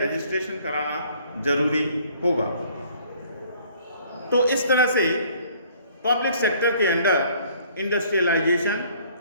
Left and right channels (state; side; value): inverted; both; correlation -0.58